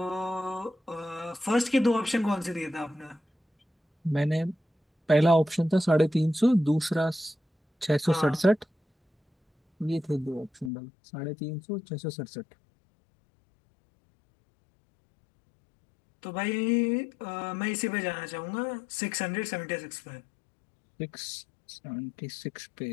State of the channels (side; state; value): right; drops out; at 10.7 s